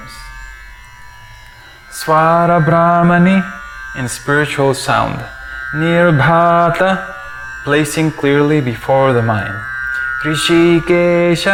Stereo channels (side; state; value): both; identical; correlation 1.00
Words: Swara Brahmani, in spiritual sound. Nirbhata, placing clearly before the mind.